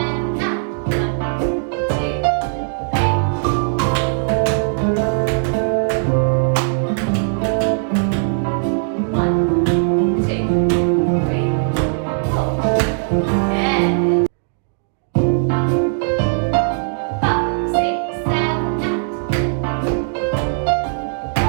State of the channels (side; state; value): left; silent; digital silence